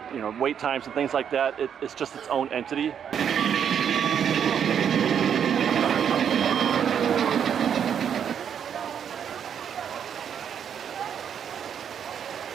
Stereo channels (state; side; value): quieter; left; 8.3 dB